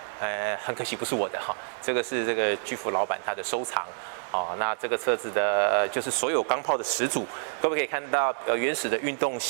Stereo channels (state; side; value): silent; left; digital silence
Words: 很可惜不是我的这个是这个巨富老板他的收藏。那这个车子的就是所有钢炮的始祖，各位可以看到原始的运动